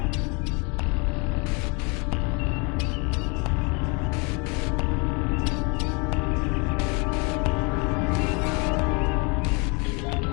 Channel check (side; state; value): right; quieter; 31.5 dB